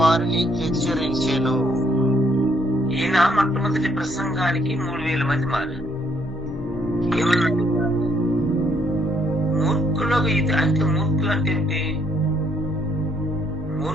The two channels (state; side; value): noise; right; hum, 24 dB below the sound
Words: హెచ్చరించెను. ఈయన మొట్టమొదటి ప్రసంగానికి 3000 మంది మారారు. ఏమన్నాడు? మూర్ఖులకు ఇది అంటే, మూర్ఖులు అంటే ఏంటి?